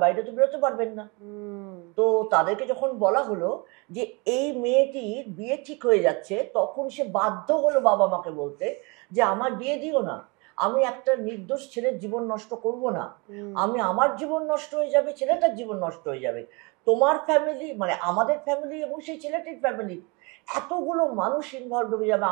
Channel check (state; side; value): quieter; left; 29.1 dB